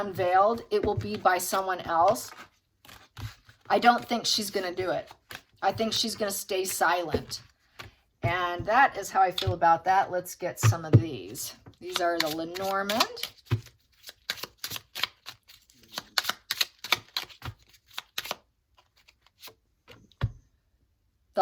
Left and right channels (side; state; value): both; identical; correlation 1.00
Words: it will be by someone else. I don't think she's going to do it. I think she's going to stay silent. And that is how I feel about that. Let's get some of these. These are the Lenormand.